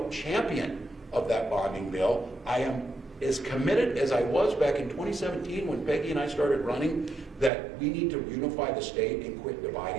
champion of that bonding bill. I am as committed as I was back in 2017 when Peggy and I started running, that we need to unify the state and quit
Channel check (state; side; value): drops out; left; at 7.5 s